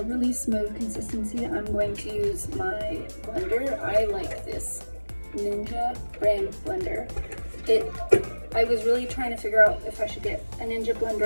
really smooth consistency, I'm going to use my blender. I like this Ninja brand blender. I was really trying to figure out if I should get a Ninja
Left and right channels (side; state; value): both; inverted; correlation -1.00